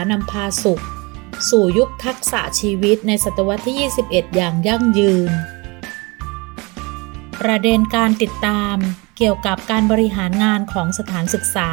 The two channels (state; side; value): quieter; left; 26.7 dB